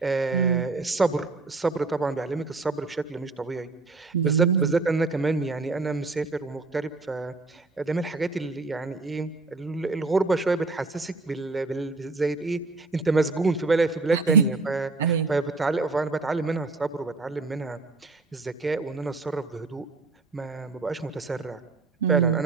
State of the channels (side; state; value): left; quieter; 3.6 dB